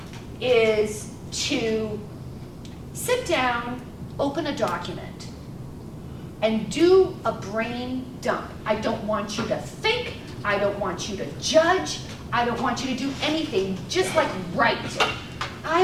is to sit down, open a document, and do a brain dump. I don't want you to think, I don't want you to judge, I don't want you to do anything, just like write.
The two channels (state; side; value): identical; both; correlation 1.00